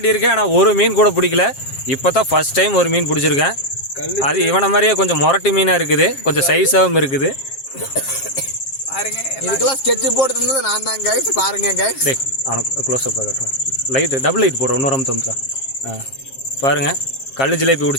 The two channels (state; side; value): late; right; 7.5 ms